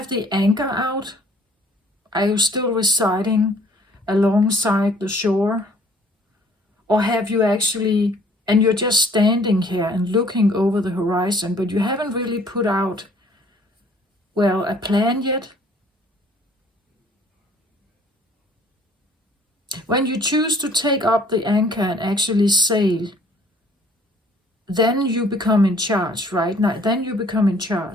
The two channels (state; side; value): normal; both; correlation 0.57